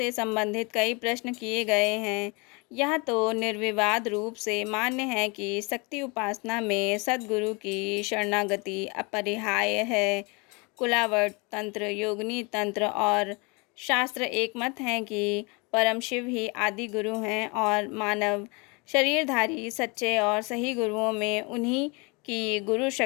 संबंधित कई प्रश्न किए गए हैं। यह तो निर्विवाद रूप से मान्य है कि शक्ति उपासना में सद्गुरु की शरणागति अपरिहार्य है। कुलावट तंत्र, योगिनी तंत्र और शास्त्र एक मत हैं कि परम शिव ही आदि गुरु हैं और मानव शरीरधारी सच्चे और सही गुरुओं में उन्हीं की गुरु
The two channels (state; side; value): quieter; right; 29.3 dB